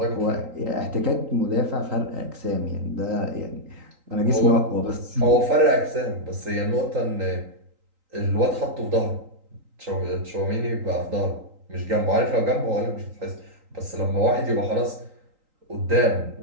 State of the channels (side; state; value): left; late; 3.8 ms